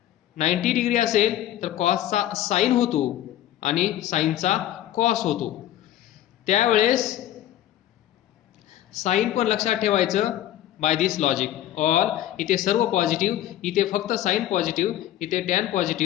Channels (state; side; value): quieter; right; 12.8 dB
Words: 90 डिग्री असेल तर कॉसचा साइन होतो आणि साइनचा कॉस होतो. त्यावेळेस साइन पण लक्षात ठेवायचं बाय दिस लॉजिक. ऑल इथे सर्व पॉझिटिव्ह, इथे फक्त साइन पॉझिटिव्ह, इथे टॅन